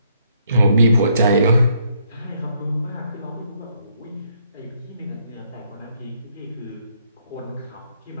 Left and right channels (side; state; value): both; inverted; correlation -0.71